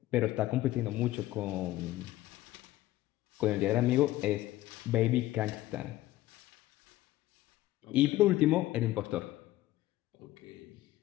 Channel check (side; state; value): right; quieter; 16.0 dB